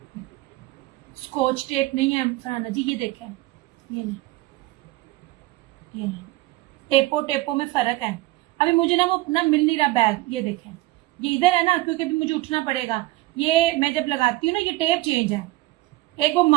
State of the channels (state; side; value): quieter; left; 18.6 dB